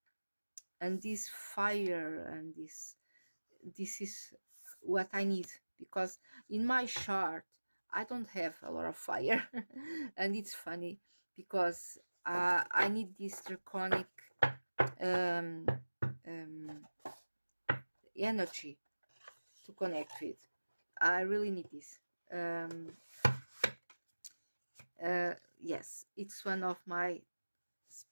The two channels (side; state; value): both; inverted; correlation -1.00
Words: this fire, and this is what I need, because in my chart I don't have a lot of fire. And it's funny because I need this draconic um, um, energy to connect with. I really need this. Yes, it's one of my